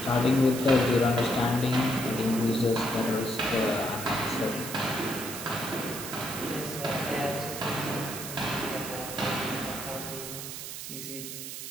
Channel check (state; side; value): noise; right; hiss, 8 dB below the sound